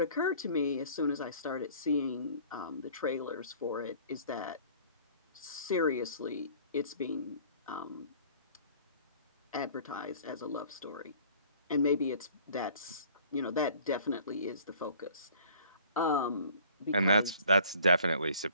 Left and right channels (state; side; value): inverted; both; correlation -0.51